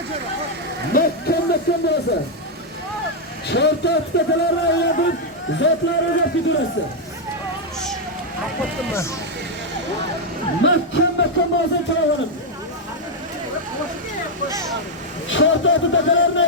Mahkam bo'lasiz. Chortoq takalarni aylantirib zotlaringiz kelurasiz. Mahkam bo'lasiz chavanlar. Chortoq takalarni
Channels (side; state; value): both; normal; correlation 0.00